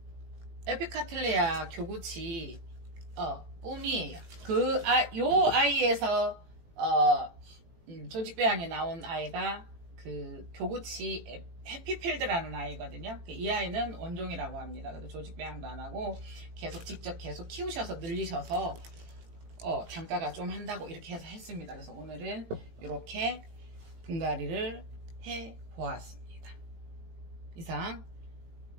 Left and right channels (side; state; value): left; late; 18 ms